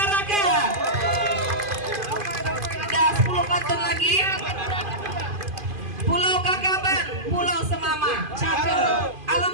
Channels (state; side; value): late; left; 2.5 ms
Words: Ada 10 pantun lagi. Pulau Kakaban, Pulau Semama, cakep.